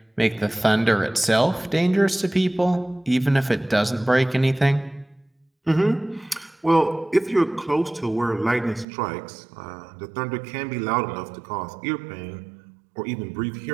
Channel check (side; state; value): left; drops out; at 8.8 s